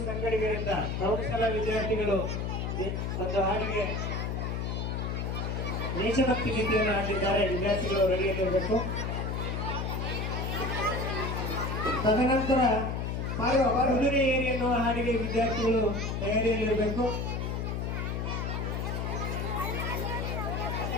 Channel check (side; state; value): left; noise; hum, 2 dB below the sound